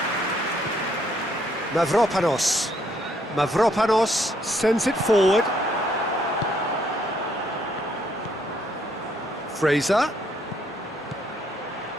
Mavropanos sends it forward. Fraser.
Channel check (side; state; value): both; normal; correlation 0.69